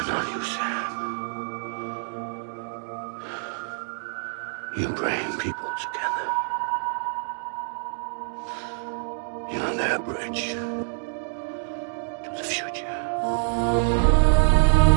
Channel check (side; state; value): left; silent; digital silence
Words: not you, Sam. You bring people together. You're their bridge to the future.